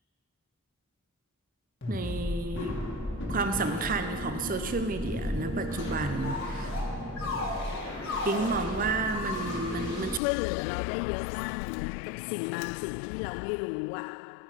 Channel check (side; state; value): right; drops out; at 10.2 s